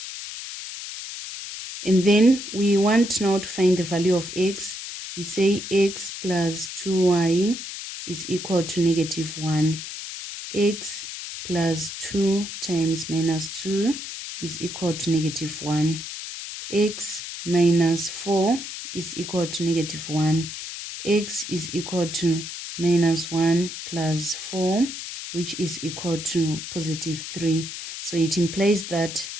And then we want now to find the value of x. We say x plus 2y is equal to negative 1. X plus 2 times minus 2 is equal to negative 1. X minus 4 is equal to negative 1. X is equal to minus 1 plus 4, which is equal to positive 3. So it implies that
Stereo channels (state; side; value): noise; left; hiss, 9 dB below the sound